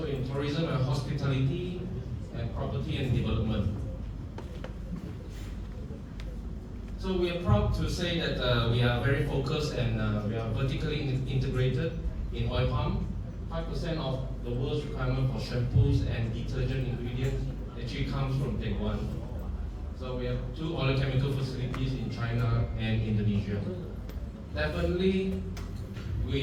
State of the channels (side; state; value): both; identical; correlation 1.00